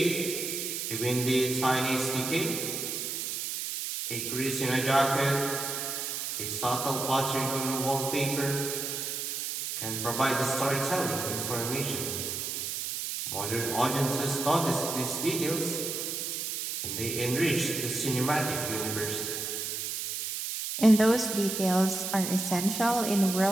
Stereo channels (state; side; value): noise; right; hiss, 3 dB below the sound